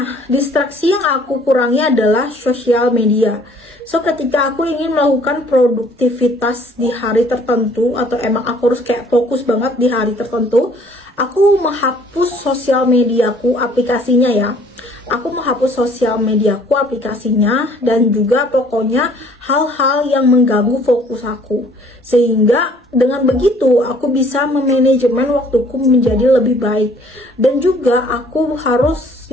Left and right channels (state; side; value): normal; both; correlation 0.58